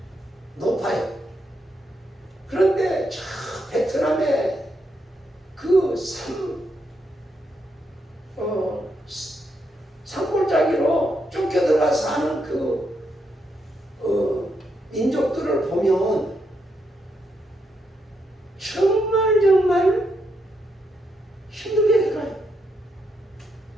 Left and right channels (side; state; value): both; normal; correlation 0.80